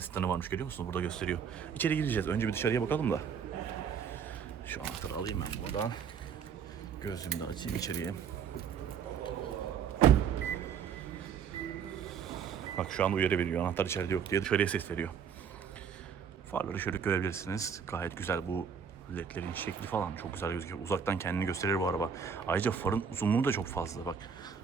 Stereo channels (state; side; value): quieter; left; 7.1 dB